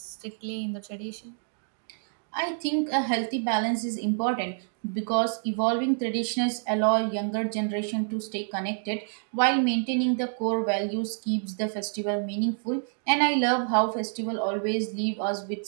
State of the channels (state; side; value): silent; left; digital silence